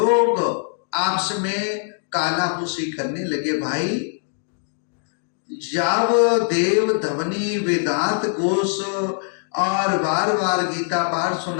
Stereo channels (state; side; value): silent; right; digital silence